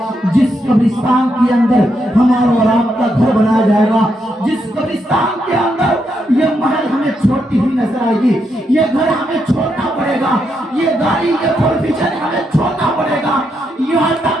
جس قبرستان کے اندر ہمارا اور آپ کا گھر بنایا جائے گا, جس قبرستان کے اندر یہ محل ہمیں چھوٹی ہی نظر آئے گی, یہ گھر ہمیں چھوڑنا پڑے گا, یہ گاڑی یہ پروفیشن ہمیں چھوڑنا پڑے گا. یہاں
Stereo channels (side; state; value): both; normal; correlation 0.80